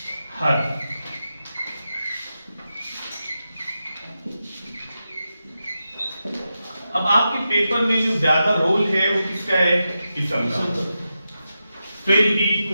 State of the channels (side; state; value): both; inverted; correlation -0.90